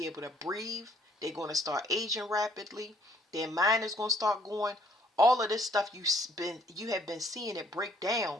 able to breathe. They're going to start aging rapidly. Their mind is going to start going. All of this stuff you have been seeing it break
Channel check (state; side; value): normal; both; correlation 0.63